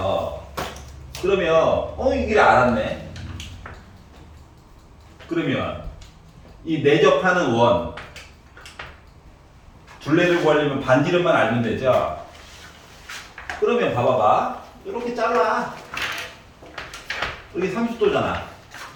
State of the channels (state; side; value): identical; both; correlation 1.00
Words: 그러면 이 길이 알았네. 그러면 이 내접하는 원 둘레를 구하려면 반지름만 알면 되죠. 그러면 봐봐봐. 이렇게 잘라. 여기 30도잖아.